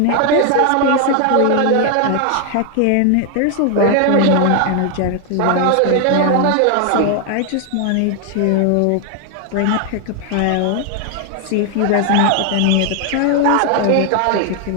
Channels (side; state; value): both; different; correlation 0.00